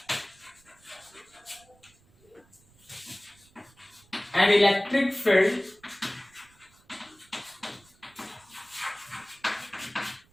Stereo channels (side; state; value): right; noise; rumble, 30 dB below the sound